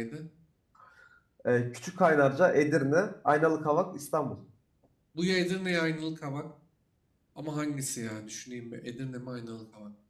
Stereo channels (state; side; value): identical; both; correlation 1.00